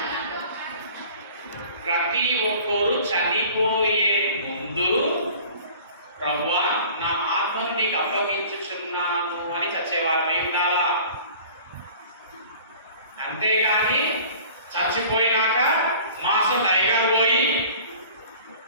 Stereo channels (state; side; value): inverted; both; correlation -0.46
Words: ప్రతి ఒక్కరు చనిపోయే ముందు ప్రభువా నా ఆత్మను నీకు అప్పగించుచున్నాను అని చచ్చేవారిని ఉండాలా. అంతేగాని చచ్చిపోయినాక మాసం టైగర్ పోయి